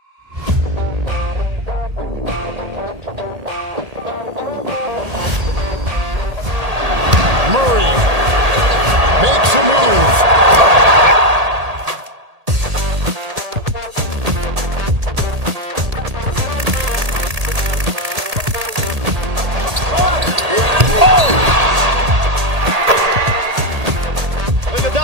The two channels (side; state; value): left; late; 1.8 ms